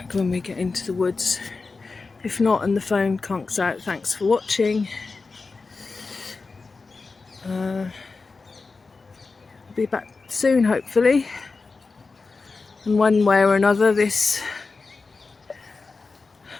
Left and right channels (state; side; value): quieter; right; 4.2 dB